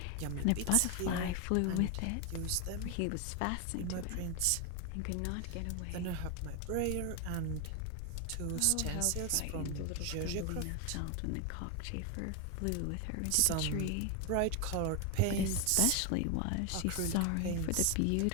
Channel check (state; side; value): different; both; correlation 0.01